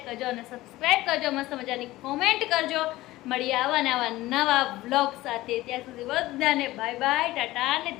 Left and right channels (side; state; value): right; quieter; 17.5 dB